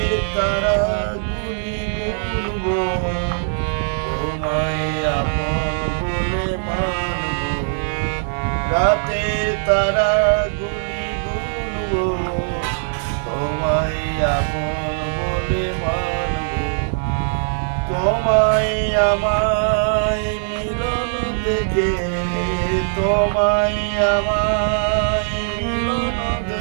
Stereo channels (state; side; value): silent; left; digital silence